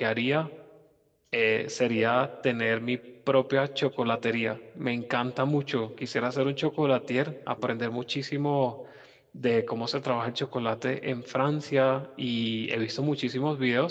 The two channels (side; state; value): both; identical; correlation 1.00